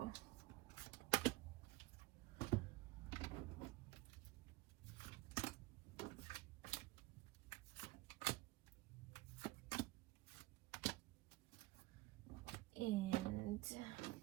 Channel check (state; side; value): quieter; left; 20.0 dB